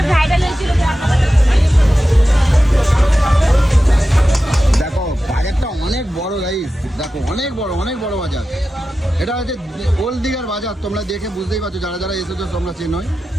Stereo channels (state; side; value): normal; both; correlation 0.93